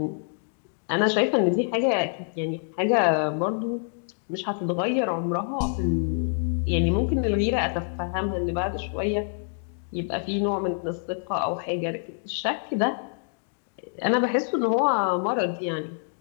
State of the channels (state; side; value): silent; right; digital silence